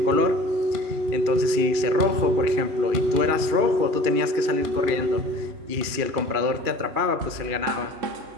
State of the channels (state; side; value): late; left; 2.4 ms